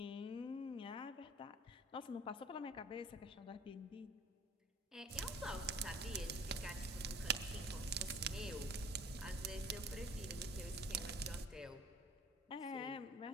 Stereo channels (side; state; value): both; normal; correlation 0.48